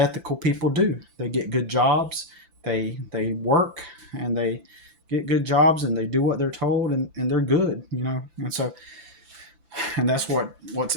people do. They get good jobs, they work, and they get good jobs, and they do what they're told, and they're good, And so and that's what's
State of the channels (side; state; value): left; late; 5.9 ms